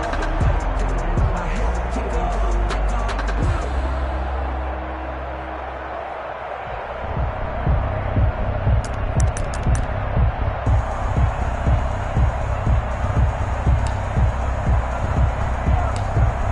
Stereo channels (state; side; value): identical; both; correlation 1.00